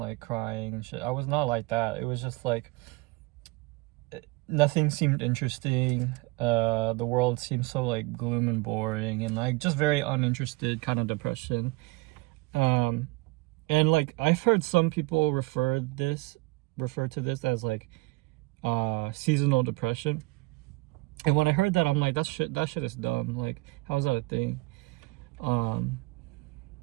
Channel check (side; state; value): left; quieter; 24.6 dB